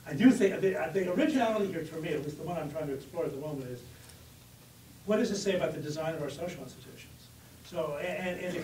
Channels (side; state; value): both; identical; correlation 1.00